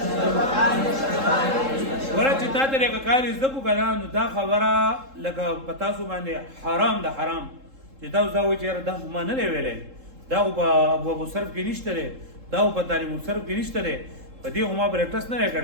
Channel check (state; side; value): late; left; 3.7 ms